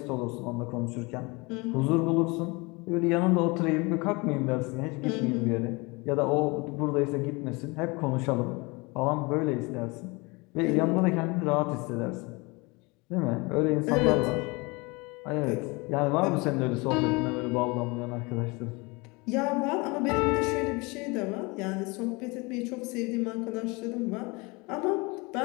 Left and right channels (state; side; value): quieter; right; 26.5 dB